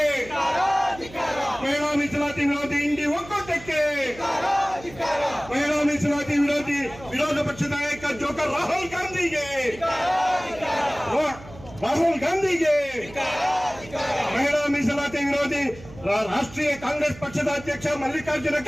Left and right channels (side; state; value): right; noise; hum, 18 dB below the sound